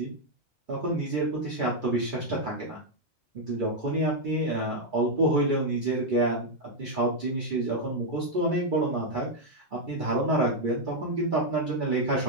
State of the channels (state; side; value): normal; both; correlation 0.00